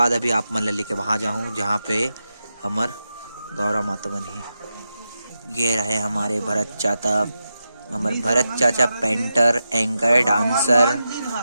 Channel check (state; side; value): inverted; both; correlation -0.89